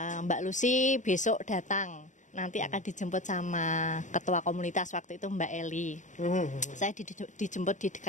Mbak Lucy besok datang. Nanti akan dijemput sama ketua komunitas waktu itu Mbak Eli. Saya dijemput di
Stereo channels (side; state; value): right; late; 0.36 ms